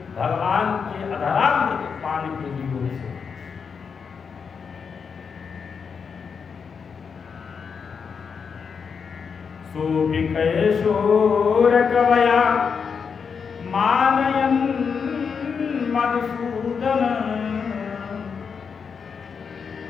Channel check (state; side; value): quieter; right; 6.1 dB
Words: भगवान के अधरामृत पान के योग से सोभिकैशोर कवया मानयन् मधुसूदन